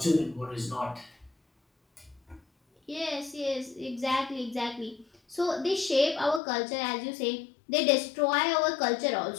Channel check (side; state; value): right; drops out; at 6.4 s